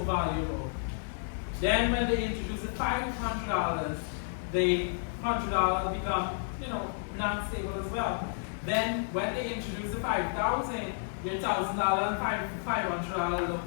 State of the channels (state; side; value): silent; right; digital silence